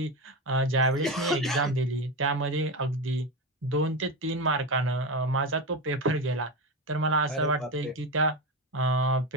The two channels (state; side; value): normal; both; correlation 0.17